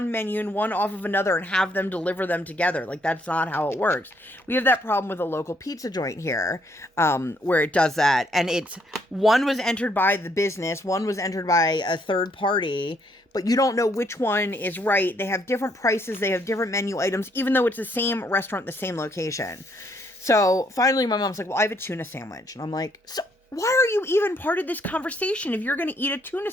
menu and one off of another and have them deliver them together. Like, that's not how it works. We have that problem with a local pizza joint here, where it does that. And it's, one was entered by the business, one was entered by a third party, but you don't know which one is right. They have different prices, they have different menu items, even though it's the same restaurant, the same location. So finally my mom's like, well, I have a tuna sandwich. And I'm like, so why are you even part of this conversation if you're going to eat a tuna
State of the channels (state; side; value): normal; both; correlation 0.70